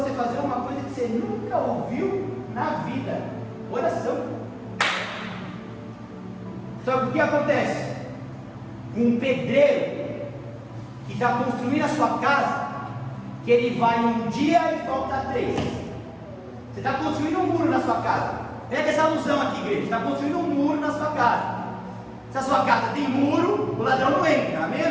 fazer uma coisa que você nunca ouviu na vida: oração. Só que o que acontece? Um pedreiro que está construindo a sua casa, que ele vai um dia e volta 3. Você está construindo um muro na sua casa. Pega essa alusão aqui, igreja. Você está construindo um muro na sua casa. Se a sua casa tem muro, o ladrão não entra. Amém ou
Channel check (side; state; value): both; identical; correlation 1.00